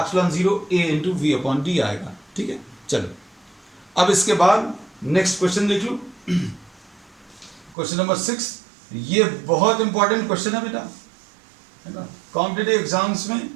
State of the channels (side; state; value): left; drops out; at 7.8 s